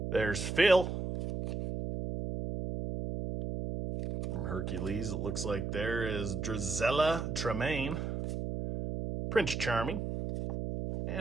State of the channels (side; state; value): right; noise; hum, 3 dB below the sound